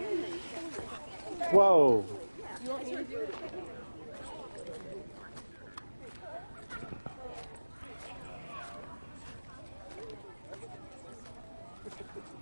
Whoa. You want me to do it?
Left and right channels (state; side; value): inverted; both; correlation -1.00